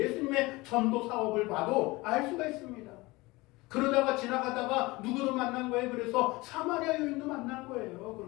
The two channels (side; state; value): right; quieter; 22.1 dB